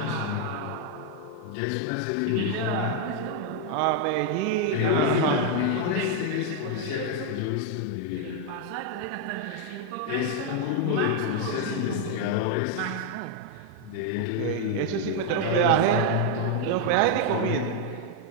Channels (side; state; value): both; different; correlation 0.00